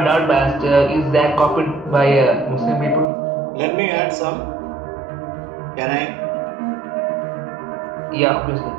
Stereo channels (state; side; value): drops out; left; at 3.1 s